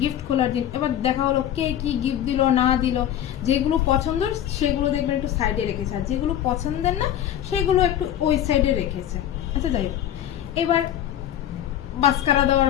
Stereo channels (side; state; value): right; quieter; 11.1 dB